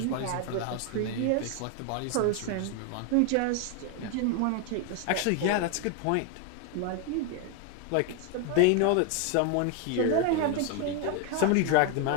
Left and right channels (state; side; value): different; both; correlation 0.01